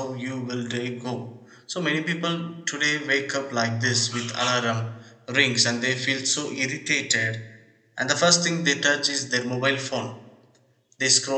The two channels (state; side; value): identical; both; correlation 1.00